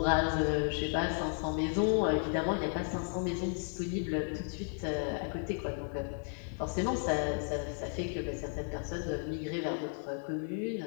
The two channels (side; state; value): right; silent; 55 dB below the other